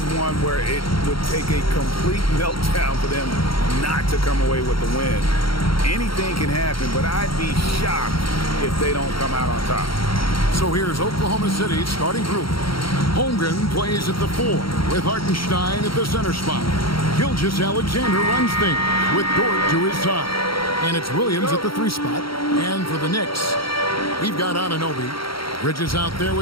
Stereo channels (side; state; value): right; late; 0.74 ms